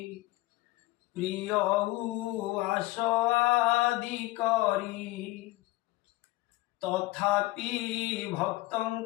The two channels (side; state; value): right; quieter; 19.9 dB